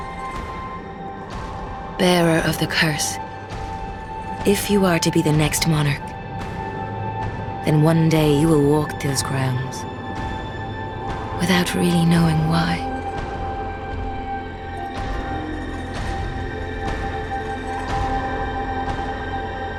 Bearer of the curse, if you are to be the next monarch, then one day you will walk those grounds without really knowing why.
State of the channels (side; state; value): both; identical; correlation 1.00